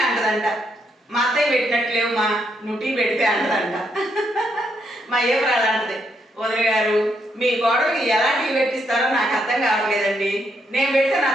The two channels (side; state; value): both; normal; correlation 0.77